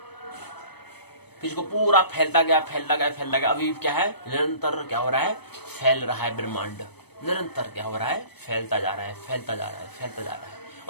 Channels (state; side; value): late; right; 0.98 ms